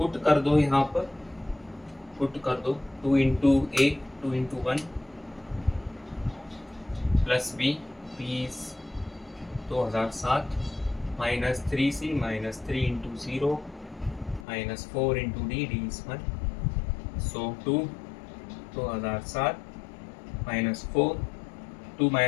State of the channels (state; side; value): drops out; right; at 14.5 s